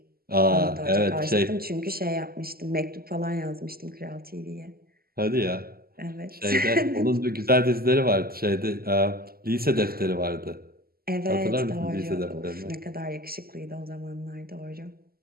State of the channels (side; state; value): left; late; 0.44 ms